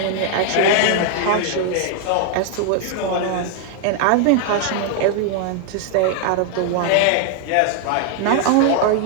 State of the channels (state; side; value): different; both; correlation 0.00